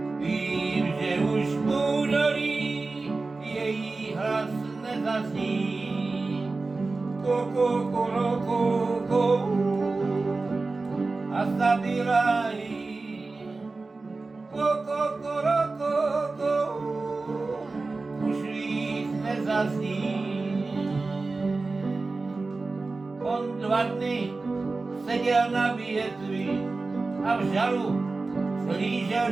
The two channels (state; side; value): quieter; left; 3.6 dB